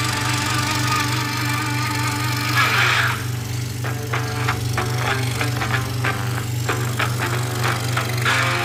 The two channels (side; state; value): both; identical; correlation 1.00